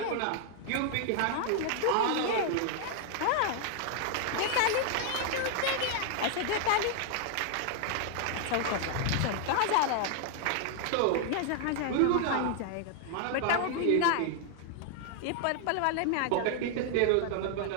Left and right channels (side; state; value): both; different; correlation 0.00